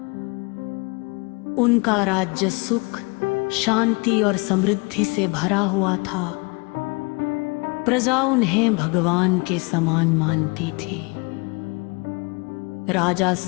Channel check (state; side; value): quieter; right; 29.5 dB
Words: उनका राज्य सुख, शांति और समृद्धि से भरा हुआ था। प्रजा उन्हें भगवान के समान मानती थी। राजा